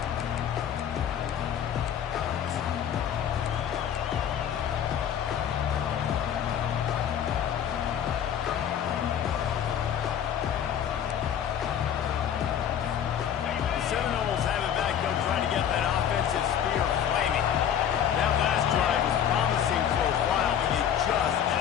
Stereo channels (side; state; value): right; quieter; 9.2 dB